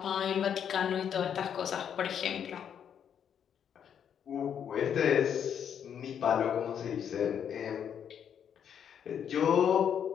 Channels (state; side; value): quieter; right; 8.5 dB